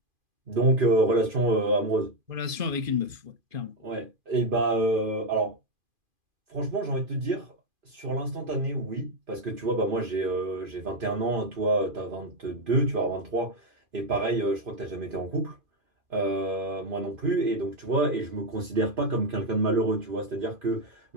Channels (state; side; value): late; left; 2.5 ms